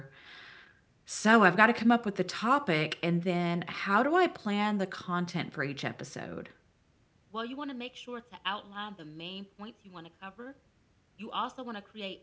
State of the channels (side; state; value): both; identical; correlation 1.00